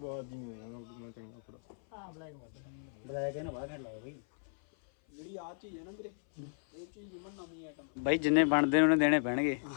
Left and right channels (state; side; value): silent; right; 54 dB below the other